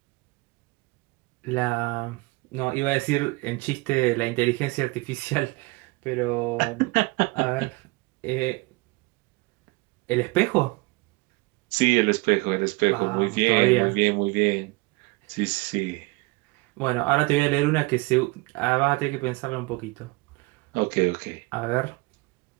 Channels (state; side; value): quieter; left; 24.8 dB